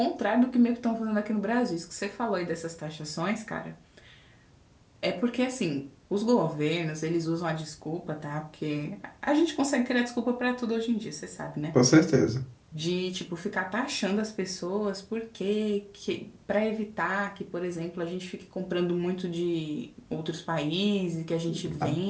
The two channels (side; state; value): both; identical; correlation 1.00